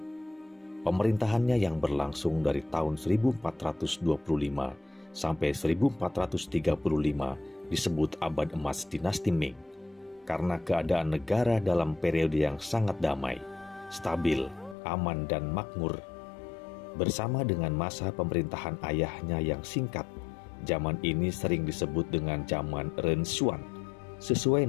Pemerintahannya yang berlangsung dari tahun 1425 sampai 1435 disebut abad emas dinasti Ming karena keadaan negara dalam periode yang sangat damai, stabil, aman dan makmur. Bersama dengan masa pemerintahan ayahnya yang singkat, zaman ini sering disebut dengan zaman Renshuan, sesuai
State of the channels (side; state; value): right; drops out; at 14.8 s